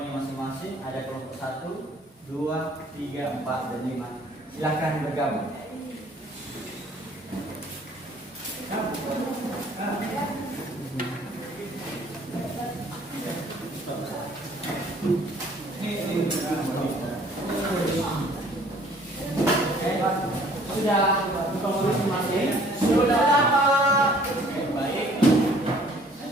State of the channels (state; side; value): normal; both; correlation 0.56